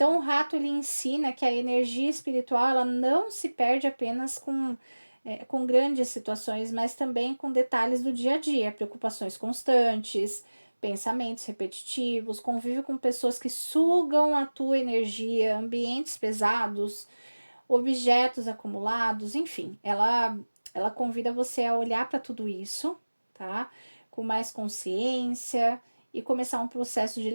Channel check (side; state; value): both; inverted; correlation -1.00